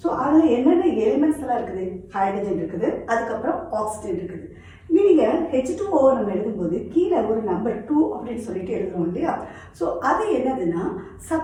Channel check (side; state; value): both; identical; correlation 1.00